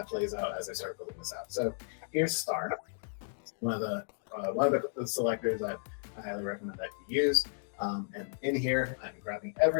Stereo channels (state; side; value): silent; right; digital silence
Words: plays out as I start building this out. So here's star, one of the selectors that I highly recommend that you use. And in here, I'm grabbing